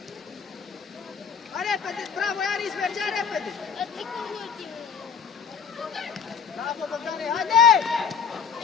Hai repede, bravo, Anis, mergea repede! Bravo, Bogdane, haide!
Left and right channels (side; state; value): right; quieter; 6.7 dB